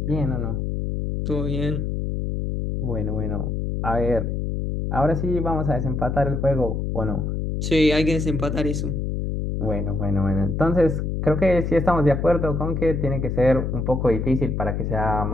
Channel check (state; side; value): noise; left; hum, 2 dB below the sound